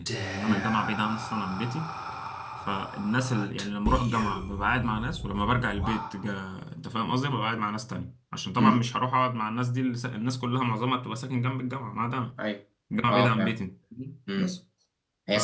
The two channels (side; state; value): both; identical; correlation 1.00